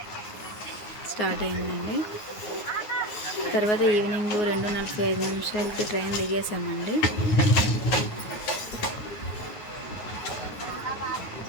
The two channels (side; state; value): right; late; 9.5 ms